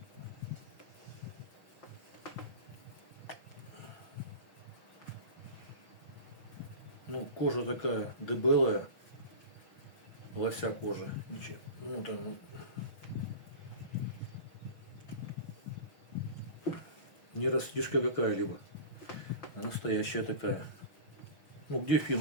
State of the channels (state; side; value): late; right; 6.0 ms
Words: Ну, кожа такая дебелая, лося кожа. Ничего. Ну, там, не растишка какая-либо, а настоящая такая. Ну, где